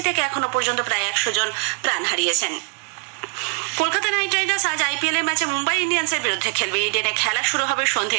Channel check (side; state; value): left; quieter; 34.4 dB